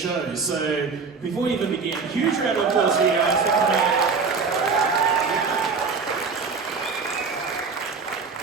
So before we even begin, huge round of applause for you guys for coming out.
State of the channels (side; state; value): left; quieter; 4.9 dB